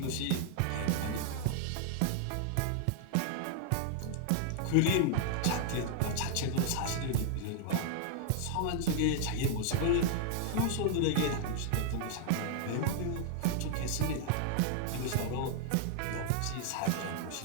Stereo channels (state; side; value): different; both; correlation 0.00